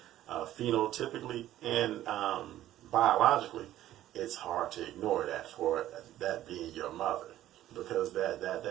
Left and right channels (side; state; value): left; quieter; 13.5 dB